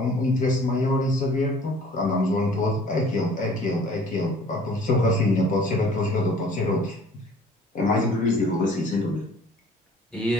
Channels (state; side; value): normal; both; correlation 0.52